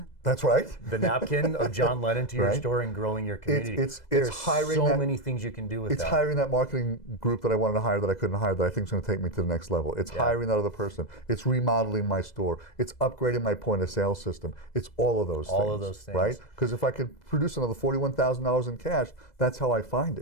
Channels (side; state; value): right; late; 2.0 ms